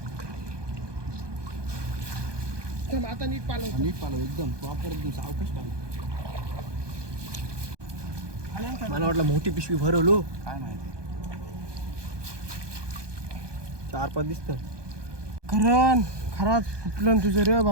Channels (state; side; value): late; left; 1.2 ms